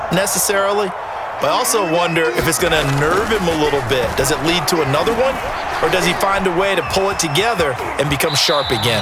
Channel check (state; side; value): identical; both; correlation 1.00